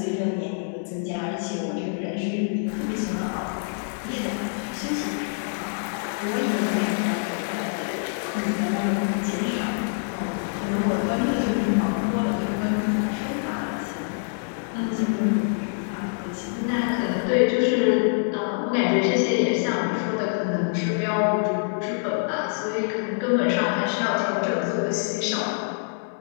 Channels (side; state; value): right; silent; digital silence